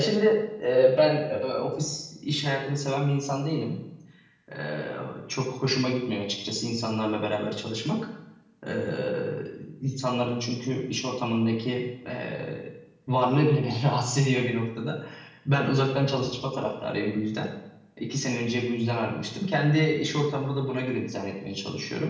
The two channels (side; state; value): both; identical; correlation 1.00